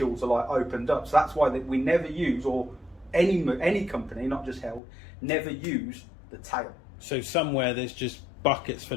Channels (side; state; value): right; drops out; at 4.8 s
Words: are like opened up. So that's why we never use, or any company, not just Held, never use the tail. So somewhere there's just buckets